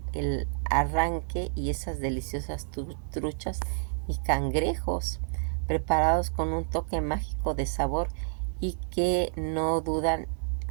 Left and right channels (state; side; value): silent; left; digital silence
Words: el arranque y esas deliciosas truchas y cangrejos, preparados con un toque mágico de sabor, y que no dudan,